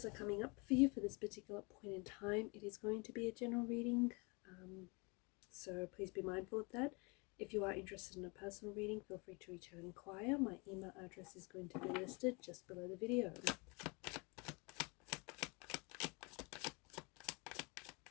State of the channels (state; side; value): quieter; right; 30.0 dB